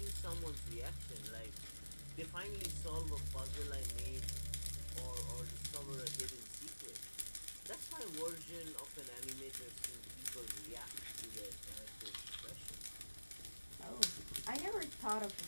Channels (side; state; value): both; inverted; correlation -1.00